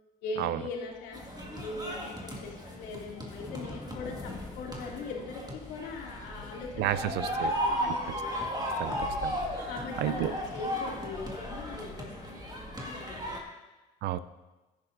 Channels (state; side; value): normal; both; correlation 0.22